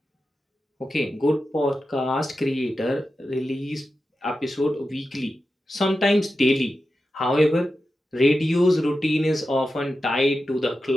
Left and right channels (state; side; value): normal; both; correlation 0.91